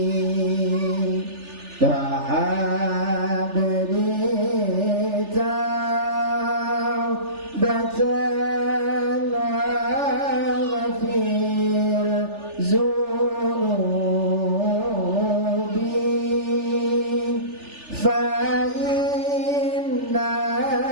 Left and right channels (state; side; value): late; left; 3.4 ms